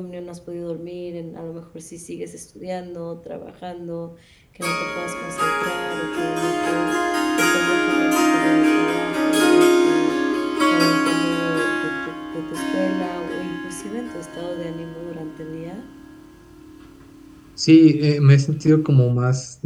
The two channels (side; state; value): both; identical; correlation 1.00